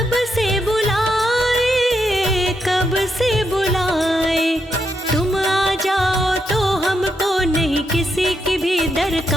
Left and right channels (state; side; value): normal; both; correlation 0.81